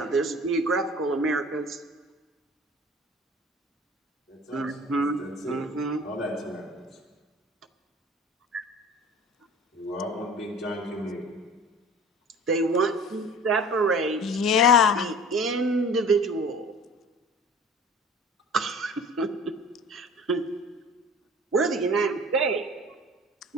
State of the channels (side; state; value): both; normal; correlation 0.43